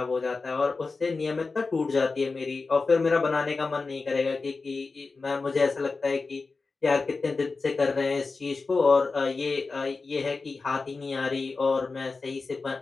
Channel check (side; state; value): right; quieter; 4.1 dB